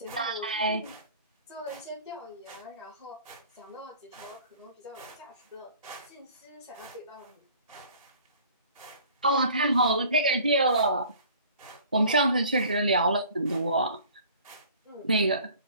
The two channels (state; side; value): inverted; both; correlation -0.50